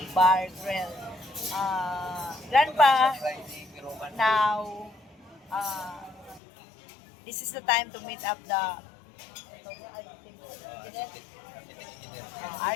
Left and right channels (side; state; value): right; drops out; at 6.4 s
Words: Bar Grill. Grandpa, now, this is the time to meet up the